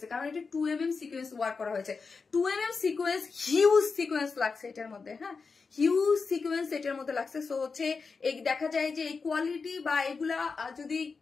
কারণ এটা 2mm সিকোয়েন্স ওয়ার্ক করা হয়েছে। 2mm সিকোয়েন্স হিউজ সিকোয়েন্স লাগছে এটার মধ্যে, হ্যাঁ হিউজ সিকোয়েন্স এটার মধ্যে লাগছে। সো হচ্ছে এই দেখা যায় যে এই কোয়ালিটি বা এগুলা যদি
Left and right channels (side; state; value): right; quieter; 4.8 dB